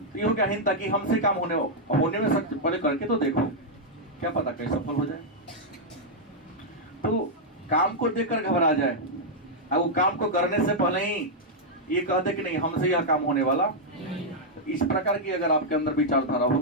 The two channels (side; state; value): both; normal; correlation -0.05